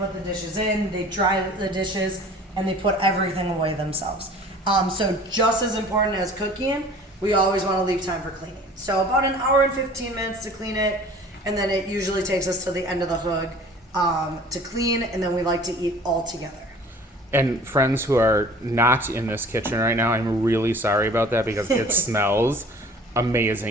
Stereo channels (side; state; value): both; normal; correlation 0.47